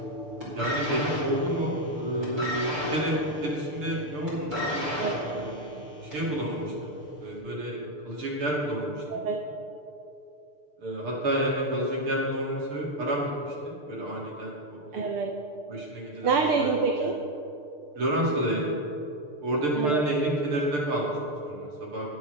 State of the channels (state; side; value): late; left; 6.7 ms